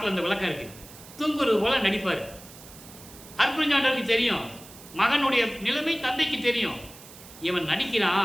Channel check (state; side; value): noise; right; hiss, 19 dB below the sound